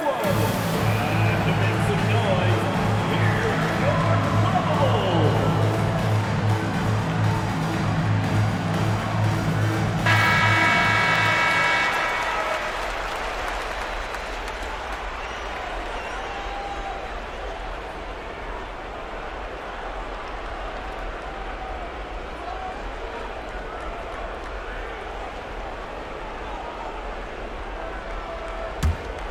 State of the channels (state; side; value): identical; both; correlation 1.00